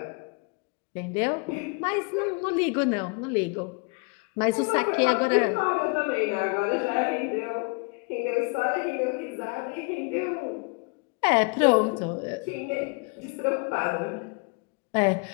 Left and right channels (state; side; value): quieter; right; 30.7 dB